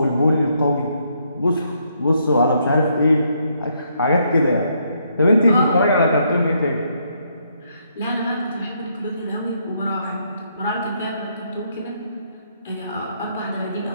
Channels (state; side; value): inverted; both; correlation -0.73